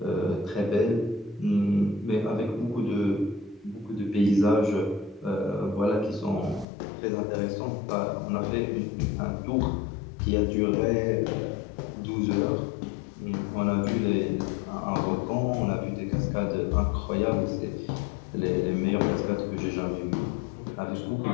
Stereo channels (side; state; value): right; drops out; at 6.7 s